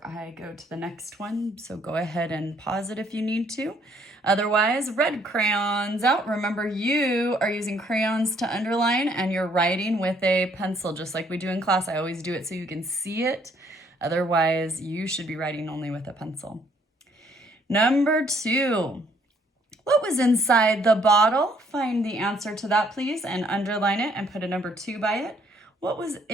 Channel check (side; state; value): both; normal; correlation 0.66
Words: I go to the next one, so go ahead and pause it if you need to. Otherwise, red crayons out. Remember, you are using crayons to underline and you're writing with a pencil, just like we do in class. I always do it so you can see it. Otherwise, you should be writing only with a pencil. Number 2. What was inside the bottle? Find the answer to that, please, and underline it and put a number 2 by it. What was